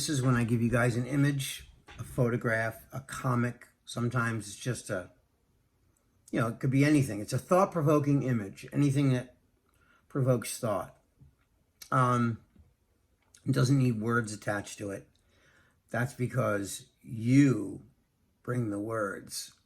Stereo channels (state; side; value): identical; both; correlation 1.00